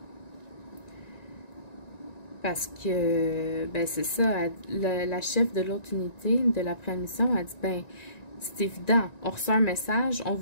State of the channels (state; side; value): late; right; 1.9 ms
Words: Parce que, ben c'est ça, la chef de l'autre unité de la préadmission a dit, ben, c'est évident, on reçoit un message, on